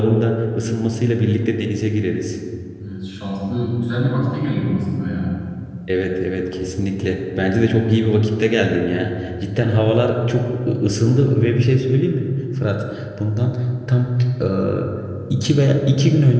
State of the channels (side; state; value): both; identical; correlation 1.00